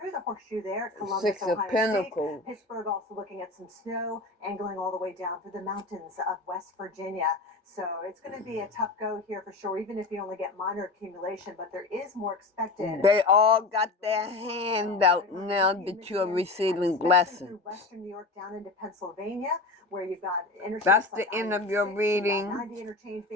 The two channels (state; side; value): quieter; right; 3.4 dB